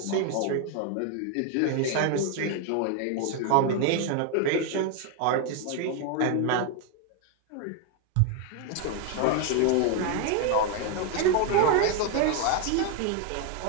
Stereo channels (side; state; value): both; different; correlation 0.01